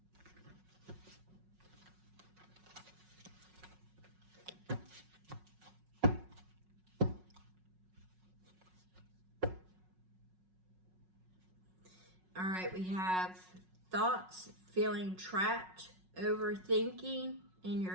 All right, we have thoughts, feeling trapped, overthinking in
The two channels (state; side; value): late; left; 5.4 ms